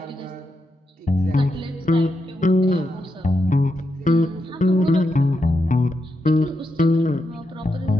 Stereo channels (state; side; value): normal; both; correlation 0.85